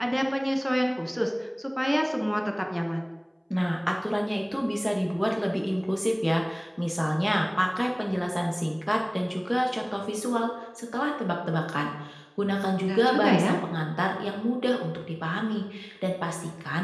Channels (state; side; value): identical; both; correlation 1.00